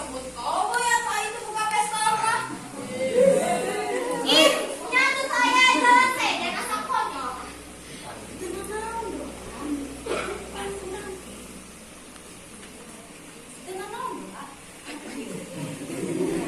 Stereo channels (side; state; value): both; identical; correlation 1.00